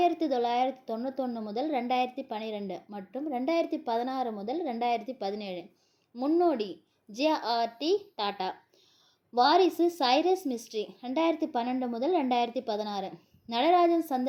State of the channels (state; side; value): identical; both; correlation 1.00